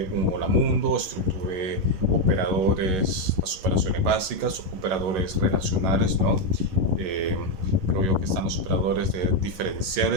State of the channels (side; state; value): left; late; 11 ms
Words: un hola mundo, estructura, operadores, las operaciones básicas, operadores relacionales, ¿no? Creo yo que están los operadores